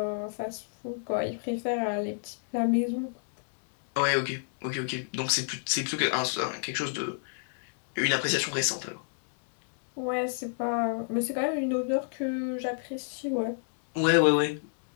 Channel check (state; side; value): silent; right; digital silence